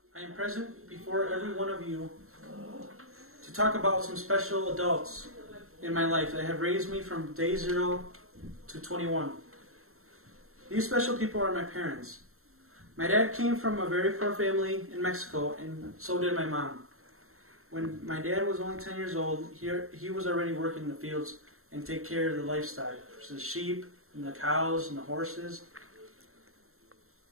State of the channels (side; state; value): left; late; 0.63 ms